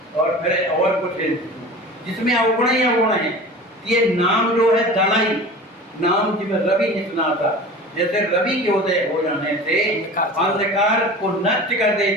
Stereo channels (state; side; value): normal; both; correlation 0.36